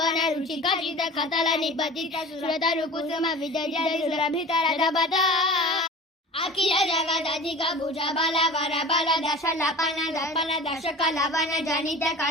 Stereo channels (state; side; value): normal; both; correlation 0.38